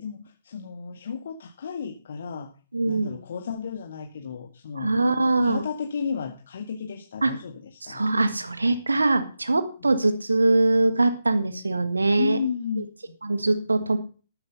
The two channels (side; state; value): both; inverted; correlation -0.91